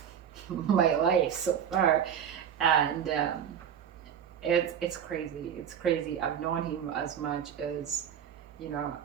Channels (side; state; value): left; quieter; 8.7 dB